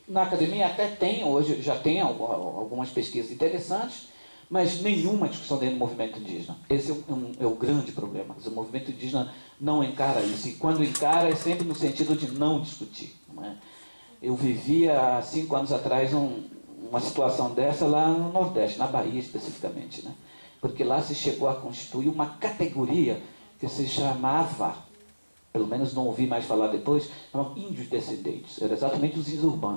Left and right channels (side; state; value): both; inverted; correlation -1.00